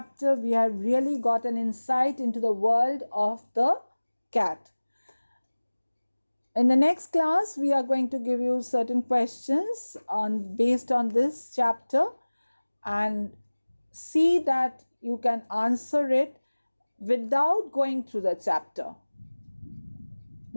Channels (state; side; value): inverted; both; correlation -1.00